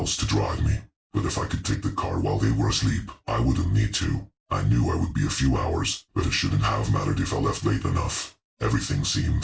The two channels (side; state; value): both; identical; correlation 1.00